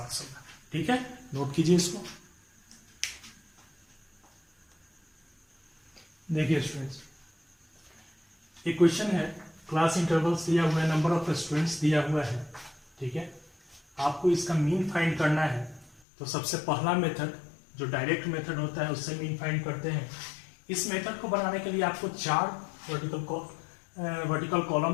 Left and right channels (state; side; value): drops out; right; at 16.0 s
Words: होगा, ठीक है। नोट कीजिए इसको। देखिए स्टूडेंट्स, एक क्वेश्चन है, क्लास इंटरवल्स दिया हुआ है, नंबर ऑफ स्टूडेंट्स दिया हुआ है, ठीक है। आपको इसका मीन फाइंड करना है। तो सबसे पहला मेथड जो डायरेक्ट मेथड होता है उससे मीन फाइंड करते हैं। इस मेथड को बनाने के लिए आपको 4 वर्टिकल